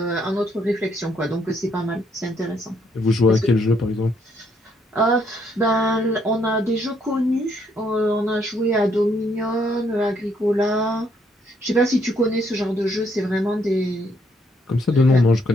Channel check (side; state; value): both; normal; correlation 0.71